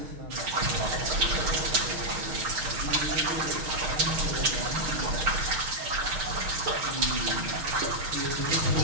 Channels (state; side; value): late; left; 6.5 ms